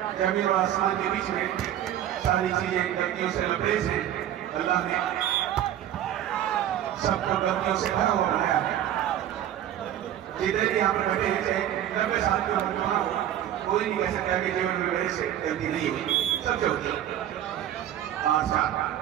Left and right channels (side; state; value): left; quieter; 11.4 dB